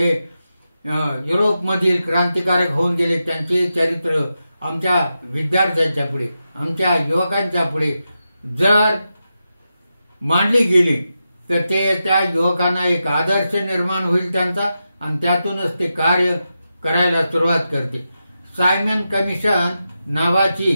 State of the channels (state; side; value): inverted; both; correlation -0.89